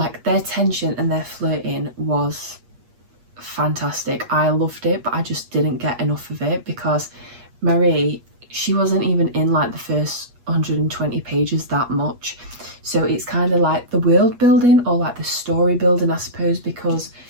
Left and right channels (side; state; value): left; late; 8.4 ms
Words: their tension and their flirting was fantastic. I loved it, but I just didn't get enough of it because Marie, she wasn't even in like the first 120 pages that much. So it's kind of like the world building, or like the story building, I suppose, because